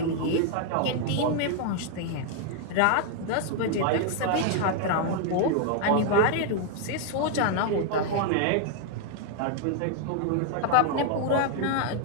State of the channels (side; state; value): both; different; correlation 0.00